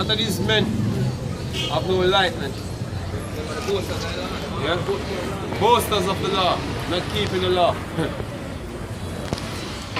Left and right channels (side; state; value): both; identical; correlation 1.00